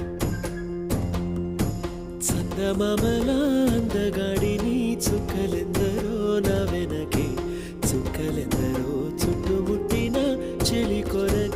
చందమామల అందగాడిని చుక్కలెందరో నా వెనకే చుక్కలెందరో చుట్టుముట్టిన చెలి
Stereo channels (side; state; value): both; identical; correlation 1.00